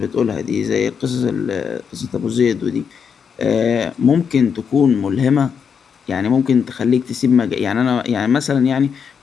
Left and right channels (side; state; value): right; quieter; 6.7 dB